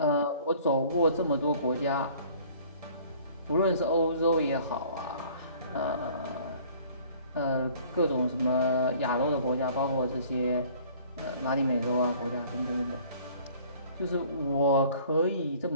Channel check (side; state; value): both; inverted; correlation -0.53